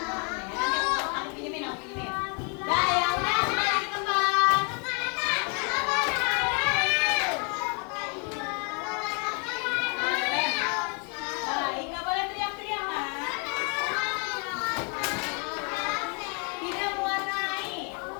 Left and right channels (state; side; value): quieter; right; 35.7 dB